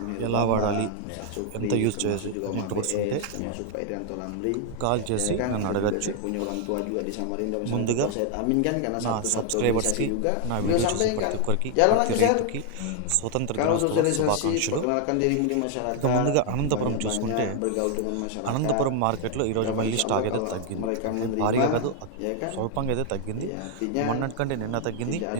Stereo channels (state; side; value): different; both; correlation 0.00